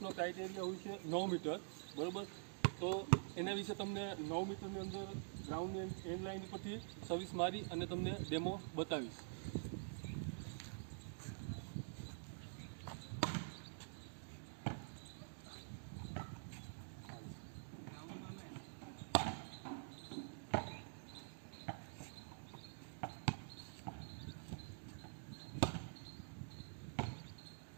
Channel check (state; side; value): silent; left; digital silence